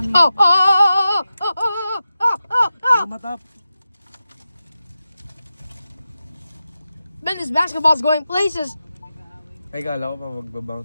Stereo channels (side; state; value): both; inverted; correlation -0.92